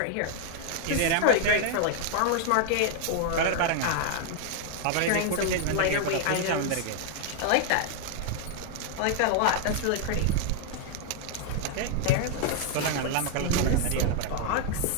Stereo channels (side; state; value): both; different; correlation 0.00